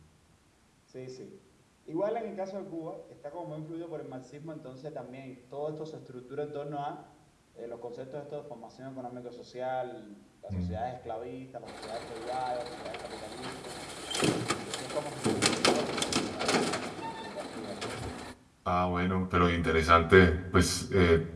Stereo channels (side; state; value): both; identical; correlation 1.00